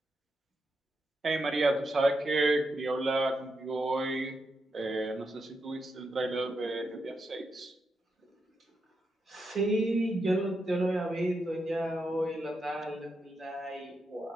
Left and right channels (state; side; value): normal; both; correlation 0.85